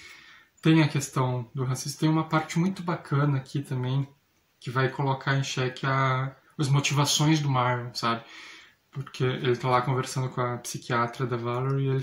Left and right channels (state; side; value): identical; both; correlation 1.00